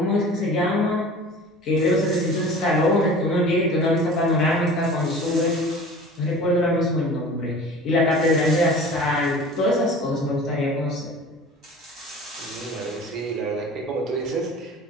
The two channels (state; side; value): normal; both; correlation 0.41